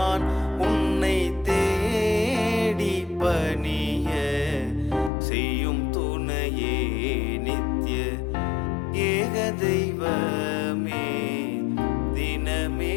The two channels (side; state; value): right; drops out; at 5.1 s